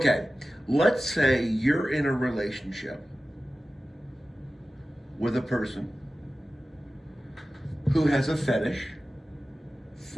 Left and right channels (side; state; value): both; normal; correlation 0.95